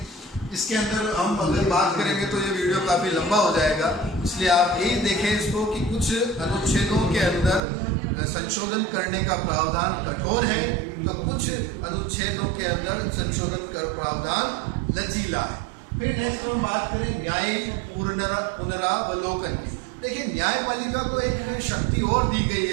इसके अंदर हम अगर बात करेंगे तो ये वीडियो काफ़ी लंबा हो जाएगा, इसलिए आप यही देखें इसको कि कुछ अनुच्छेदों के अंदर संशोधन करने का प्रावधान कठोर है तो कुछ अनुच्छेदों के अंदर संशोधन का प्रावधान लचीला है। फिर नेक्स्ट हम बात करें न्यायिक पुनरावलोकन की। देखिए, न्यायपालिका को एक शक्ति और दी गई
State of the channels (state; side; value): drops out; left; at 7.6 s